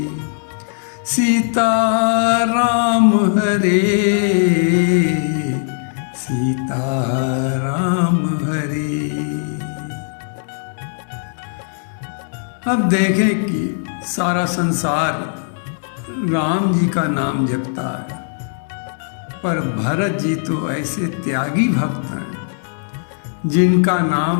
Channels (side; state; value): right; silent; digital silence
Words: सीताराम हरे सीताराम हरे। अब देखें कि सारा संसार राम जी का नाम जपता है, पर भरत जी तो ऐसे त्यागी भक्त हैं जिनका